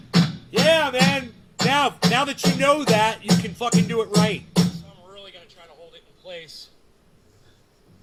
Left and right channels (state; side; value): identical; both; correlation 1.00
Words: Yeah, man. Now that you know that, you can fucking do it right. So I'm really gonna try to hold it in place.